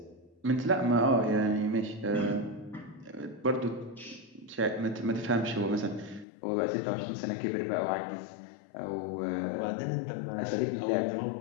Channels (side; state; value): right; drops out; at 6.2 s